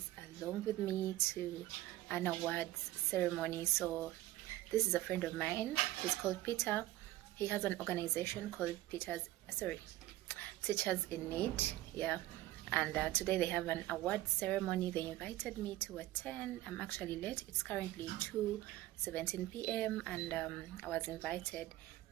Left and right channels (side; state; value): left; quieter; 16.2 dB